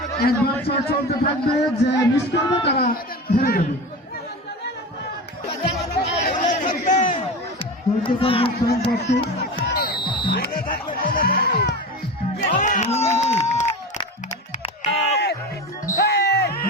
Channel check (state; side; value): normal; both; correlation 0.27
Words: একবার শট চলতে থাকবে যে মিস করবে তারা হেরে যাবে